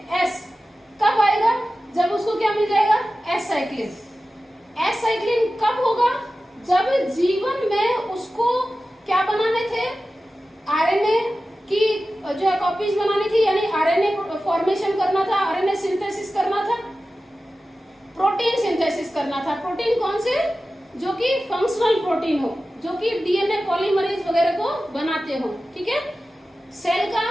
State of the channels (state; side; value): normal; both; correlation 0.94